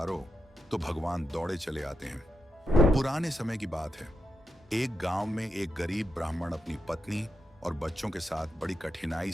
तो भगवान दौड़े चले आते हैं। पुराने समय की बात है। एक गांव में एक गरीब ब्राह्मण अपनी पत्नी और बच्चों के साथ बड़ी कठिनाई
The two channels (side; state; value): both; normal; correlation 0.85